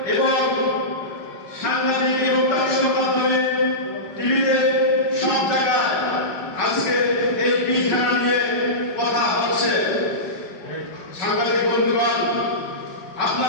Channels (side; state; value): right; late; 5.7 ms